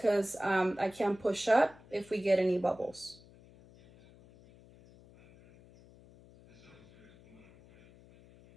I can't push up if we get any bubbles.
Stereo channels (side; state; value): left; noise; hum, 24 dB below the sound